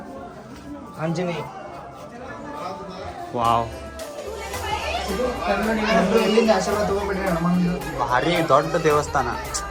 ಆಂಜನೇಯ ವಾವ್, ಆಶೀರ್ವಾದ ತಗೊಂಡ್ಬಿಡ್ರಿ. ಭಾರಿ ದೊಡ್ಡ ದೇವಸ್ಥಾನ,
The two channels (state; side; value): identical; both; correlation 1.00